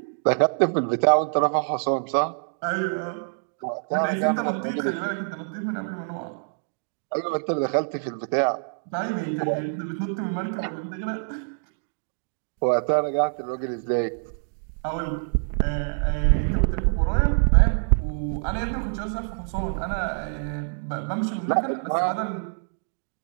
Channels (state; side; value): silent; left; digital silence